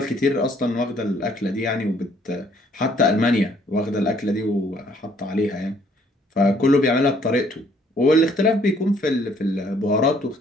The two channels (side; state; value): both; normal; correlation 0.63